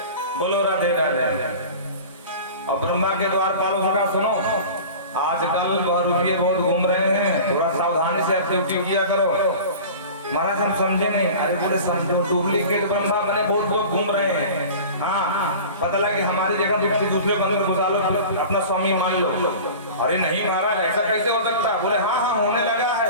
बोलो राधे राधे। और ब्रह्मा के द्वारपालों से कहा सुनो, आजकल बहुरूपिये बहुत घूम रहे हैं, थोड़ा सावधानी से ड्यूटी किया करो। महाराज हम समझे नहीं। अरे बोले समझो, डुप्लीकेट ब्रह्मा बने बहुत लोग घूम रहे हैं। हाँ, पता लगा कि हमारी जगह दूसरे बंदर घुसा लो, अपना स्वामी मान लो। अरे नहीं महाराज, ऐसा कैसे हो सकता? बोले हाँ हाँ होने लगा है,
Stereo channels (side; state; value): both; inverted; correlation -0.37